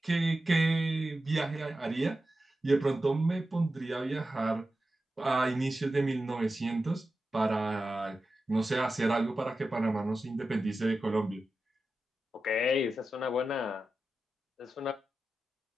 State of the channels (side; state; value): both; normal; correlation 0.92